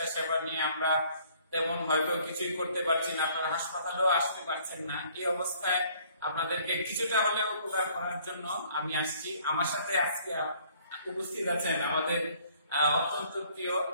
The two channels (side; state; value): both; inverted; correlation -0.59